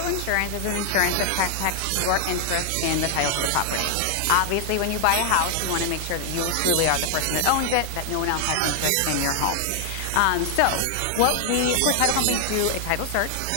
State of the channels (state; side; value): different; both; correlation 0.00